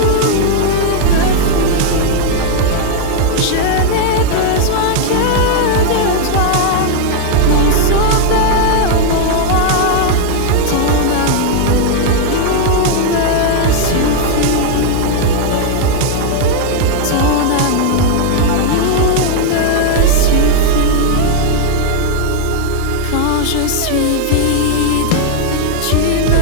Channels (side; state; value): both; different; correlation 0.00